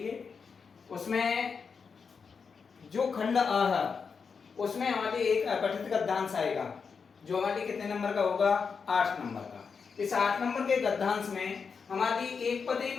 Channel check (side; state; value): right; quieter; 5.6 dB